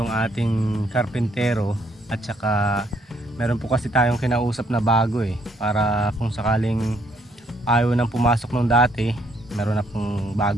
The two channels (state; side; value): normal; both; correlation 0.69